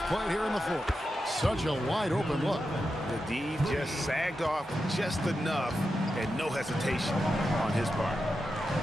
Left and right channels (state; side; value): normal; both; correlation 0.89